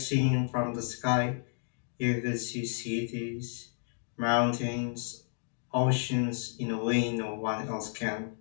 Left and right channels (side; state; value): right; silent; 57 dB below the other